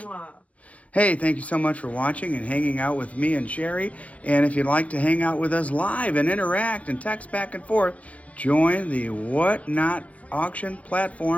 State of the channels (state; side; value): late; right; 0.066 ms